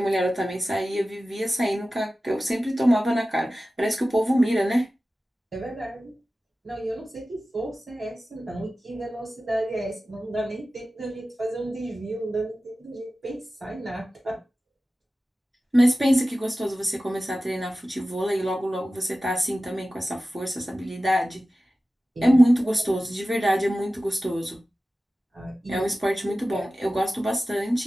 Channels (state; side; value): normal; both; correlation 0.95